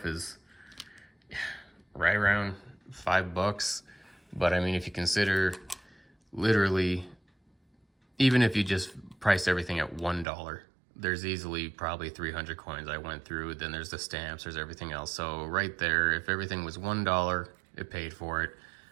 is right around $5. But I mean, if you consider literally, even if you just priced everything at $1, there's easily probably 300 coins I went through. Then there's the stamps, there's everything else. So right there, if everything was $1, it paid for it.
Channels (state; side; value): drops out; left; at 10.2 s